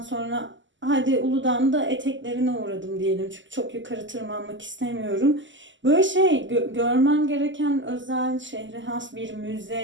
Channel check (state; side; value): late; left; 0.54 ms